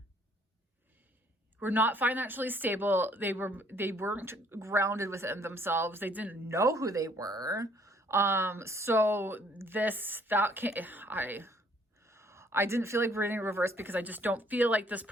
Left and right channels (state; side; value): normal; both; correlation 0.62